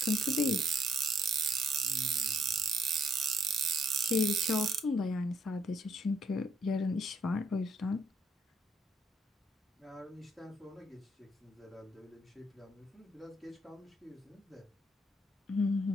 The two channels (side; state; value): both; normal; correlation 0.70